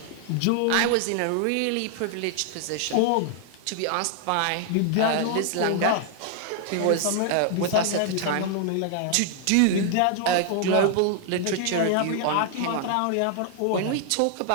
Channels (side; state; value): both; different; correlation 0.00